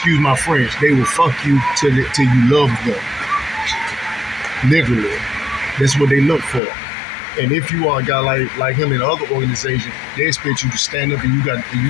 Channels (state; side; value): drops out; right; at 6.6 s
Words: my French. They will fuck you till you love them. Literally. That's what they look for. And if you are a guy like him in other organizations, they expect you to stand up and you got